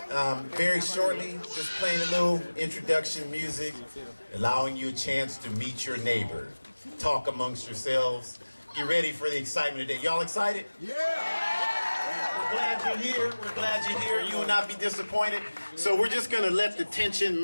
very shortly, just playing a little introduction music, allowing you a chance to meet your neighbor, talk amongst yourselves, get ready for the excitement today. Y'all excited? We're glad you're here. We're glad you're here. You will not be disappointed. So we're just gonna let the tension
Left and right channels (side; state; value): both; inverted; correlation -1.00